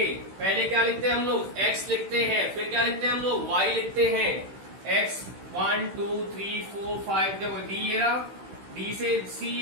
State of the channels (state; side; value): late; left; 16 ms